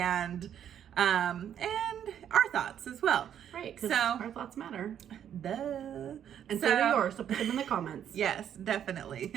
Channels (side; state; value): left; quieter; 9.6 dB